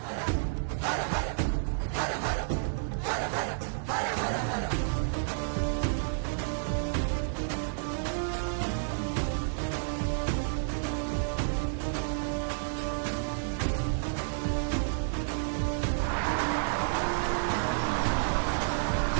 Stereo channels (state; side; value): silent; left; digital silence